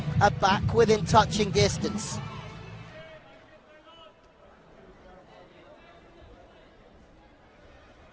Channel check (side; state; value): both; identical; correlation 1.00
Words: are back within touching distance.